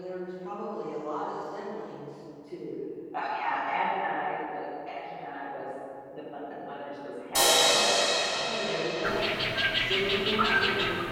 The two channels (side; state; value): both; identical; correlation 1.00